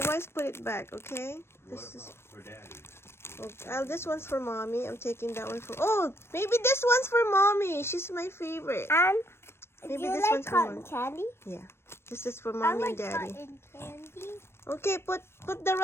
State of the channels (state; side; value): late; right; 0.12 ms